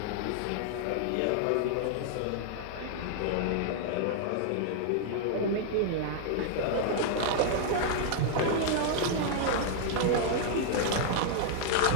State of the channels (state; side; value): different; both; correlation 0.00